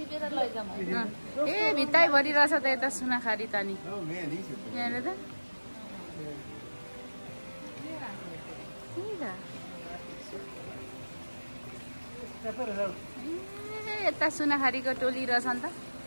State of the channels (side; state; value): both; inverted; correlation -1.00